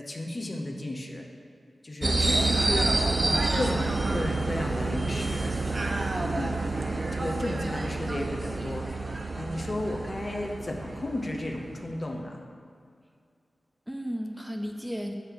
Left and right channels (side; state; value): both; normal; correlation 0.95